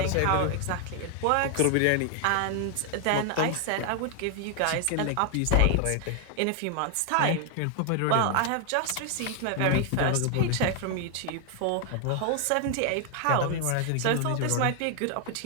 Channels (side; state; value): both; different; correlation 0.00